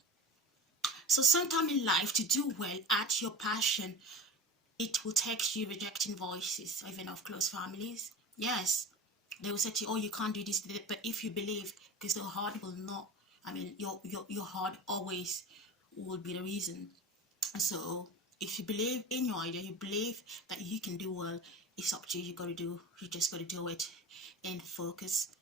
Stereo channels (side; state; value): both; normal; correlation 0.31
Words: So sometime in life, to do well at your passion, it will take you rejecting voices, even of close families. Yes, they will say to you, oh, you can't do this, but if you believe, because the heart will not, I mean, your heart always will be the reason. So if you believe in your idea, you believe that you can do well, it's up to you. You just gotta do it, and focus